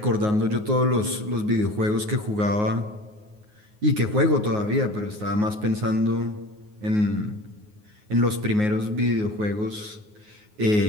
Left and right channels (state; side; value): late; left; 9.5 ms